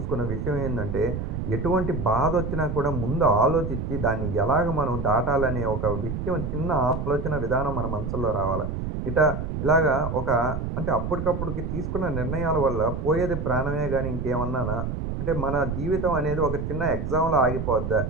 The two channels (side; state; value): right; noise; rumble, 4 dB below the sound